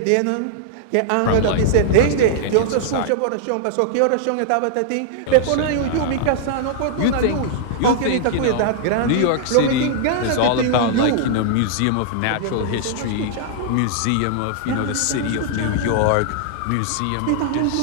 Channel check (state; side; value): different; both; correlation -0.01